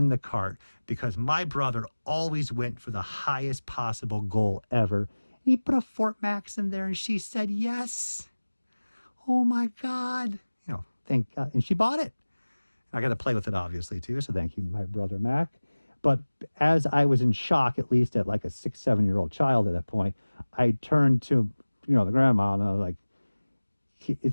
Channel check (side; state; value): both; inverted; correlation -1.00